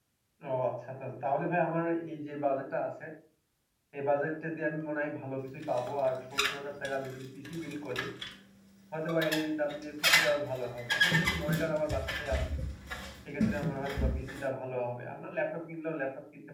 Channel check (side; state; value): both; identical; correlation 1.00